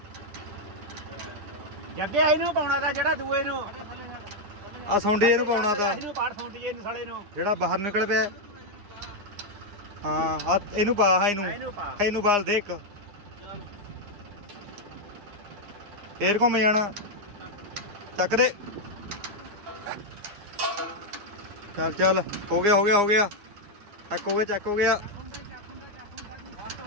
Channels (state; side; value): late; left; 10 ms